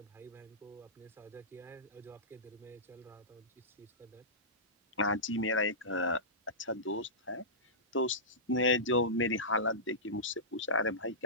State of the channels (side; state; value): both; normal; correlation -0.19